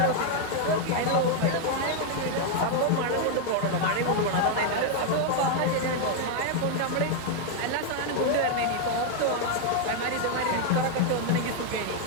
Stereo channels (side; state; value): both; different; correlation 0.00